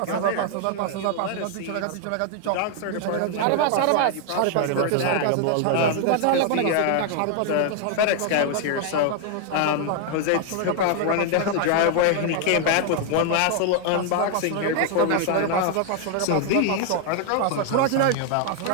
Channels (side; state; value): both; different; correlation 0.00